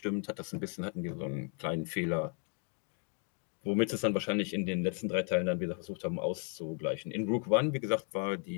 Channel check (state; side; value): quieter; right; 40.0 dB